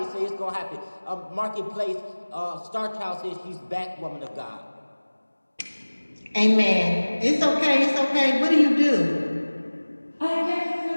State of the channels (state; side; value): inverted; both; correlation -1.00